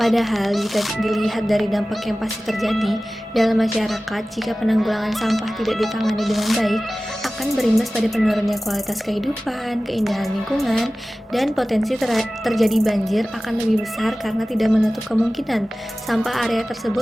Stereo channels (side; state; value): both; normal; correlation 0.97